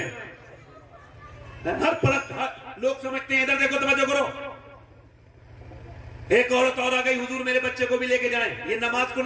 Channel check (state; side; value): identical; both; correlation 1.00